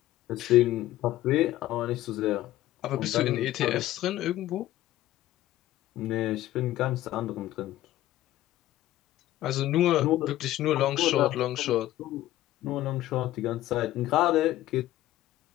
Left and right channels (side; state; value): right; quieter; 14.8 dB